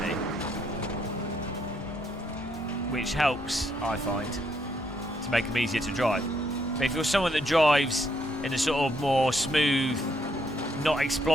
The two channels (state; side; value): normal; both; correlation 0.73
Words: Which helps, I find, to make them easier to drive. But if you're someone that drives in a sort of more smooth, not